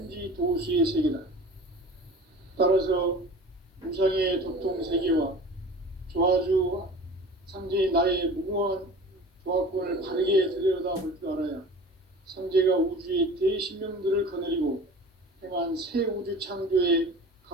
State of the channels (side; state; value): both; normal; correlation 0.40